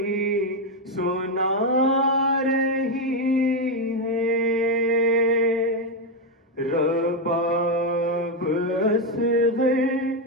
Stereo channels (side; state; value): both; normal; correlation 0.04